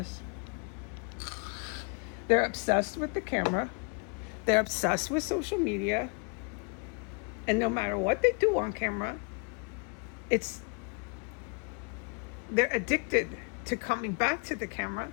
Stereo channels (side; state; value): right; quieter; 36.1 dB